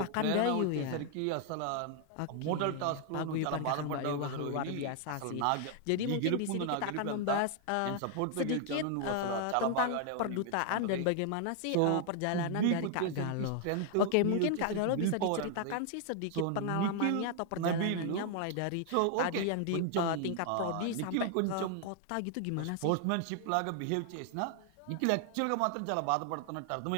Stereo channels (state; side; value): different; both; correlation 0.00